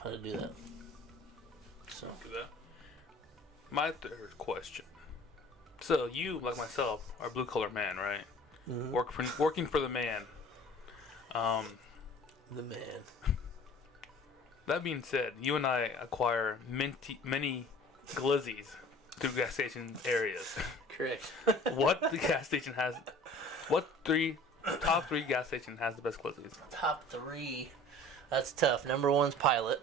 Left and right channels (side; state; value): both; normal; correlation 0.47